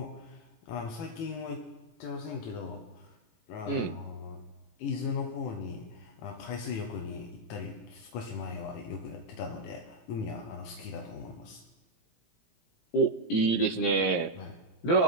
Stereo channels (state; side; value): late; right; 17 ms